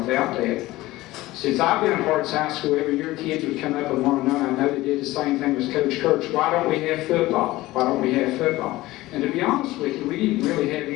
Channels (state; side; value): quieter; right; 18.0 dB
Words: without that. Since I've been at Harts High School, every year kids would come up and want to know, and I know they did the same thing as Coach Kurtz, why don't we have football? Why don't we have football? And to be honest with you, we didn't really have